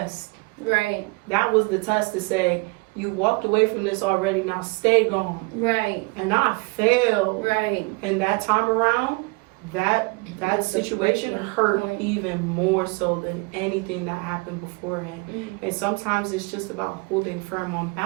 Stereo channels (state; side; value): quieter; left; 28.7 dB